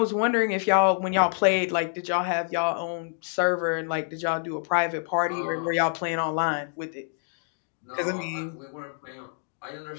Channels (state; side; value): silent; right; digital silence